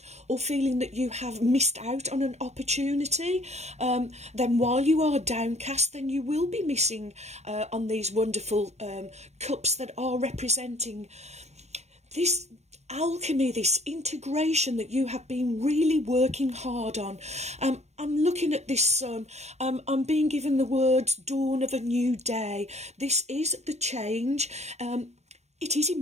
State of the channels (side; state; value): left; late; 0.32 ms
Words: or feeling that you have missed out on an opportunity, then while you are downcast, then you will be missing on these wonderful cups that are representing this alchemy, this integration that you have been really working hard on. I'm looking at this sun. I'm being given the words dawn of a new day. This is the change. It is